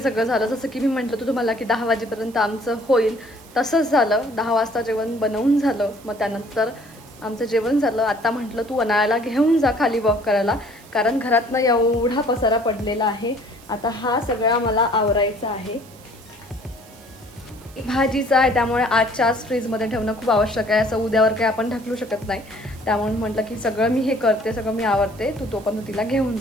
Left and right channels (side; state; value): right; noise; hiss, 24 dB below the sound